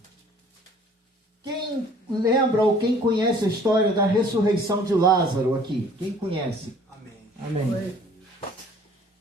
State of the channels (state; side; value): normal; both; correlation 0.54